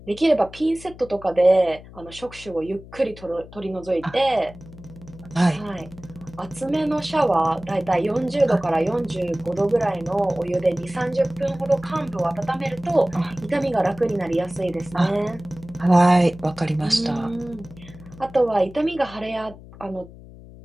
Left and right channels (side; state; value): left; noise; hum, 18 dB below the sound